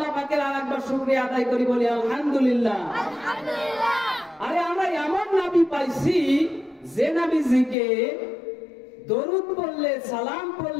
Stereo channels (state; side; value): drops out; right; at 7.8 s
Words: পাকের আরেকবার শুকরিয়া আদায় করি, বলি আলহামদুলিল্লাহ। আরে আমরা এমন নবী পাইছি যে নবীজিকে দরুদ পড়লে, সালাম